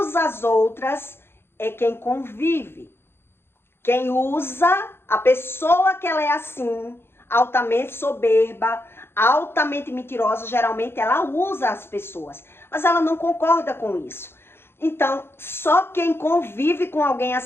as outras é quem convive. Quem usa, a pessoa que ela é assim, altamente soberba, altamente mentirosa, geralmente ela usa as pessoas, mas ela não concorda com isso. Então, só quem convive com alguém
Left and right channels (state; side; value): late; right; 0.11 ms